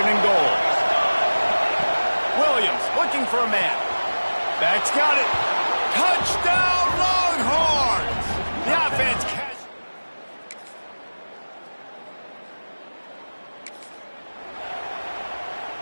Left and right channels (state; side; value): inverted; both; correlation -1.00